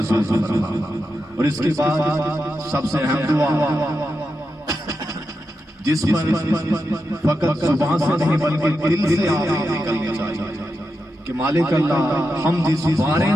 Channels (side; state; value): both; normal; correlation 0.88